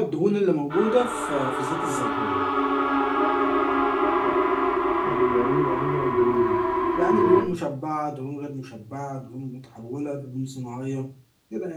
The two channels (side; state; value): both; identical; correlation 1.00